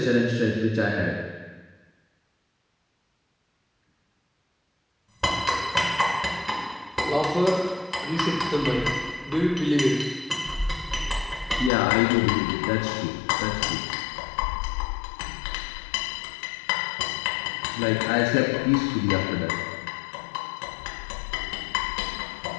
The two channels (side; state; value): right; drops out; at 11.7 s